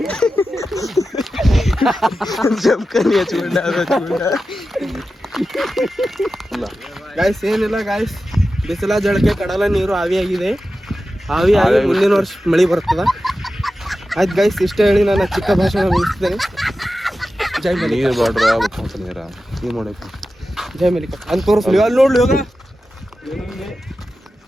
ಜಮ್ಕನಿ ಹಚ್ಕೊಂಡ ಗಾಯ್ಸ್ ಏನಿಲ್ಲ ಗಾಯ್ಸ್ ಬಿಸಿಲ ಜಳಕೆ ಕಡಲ ನೀರು ಆವಿಯಾಗಿದೆ ಆವಿಯಾಗಿ ಮುಂದಿನ ವರ್ಷ ಮಳೆ ಬರ್ತದ ಆಯ್ತು ಗಾಯ್ಸ್ ಇಷ್ಟ ಹೇಳಿ ನಾನು ಚಿಕ್ಕ ಭಾಷಣ ಮುಗಿಸ್ತೇನೆ ಜೈ ಮಲಿಕ ನೀವು ಮಾಡಬೇಕು ಜೈ ಮಲಿಕ ಅಂತ ತೋರಿಸ್ಲಿ ಅಲ್ಲಿ ನೋಡ್ಲಿ ಹೋಗ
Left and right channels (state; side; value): normal; both; correlation 0.93